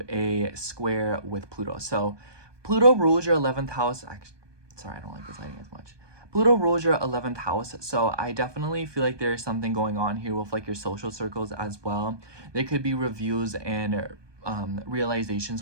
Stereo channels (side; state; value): left; late; 1.2 ms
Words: a square with Pluto. So Pluto rules your 11th house. Actually, sorry, I don't like this lighting as much. Pluto rules your 11th house. So I definitely feel like there's something going on here with like your social circles as well. There could be reviews and realizations